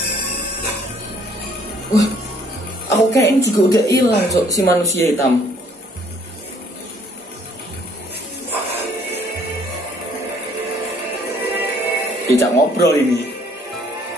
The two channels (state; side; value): normal; both; correlation 0.61